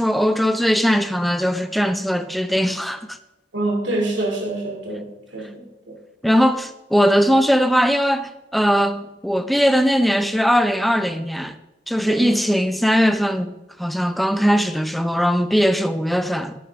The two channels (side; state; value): both; normal; correlation 0.93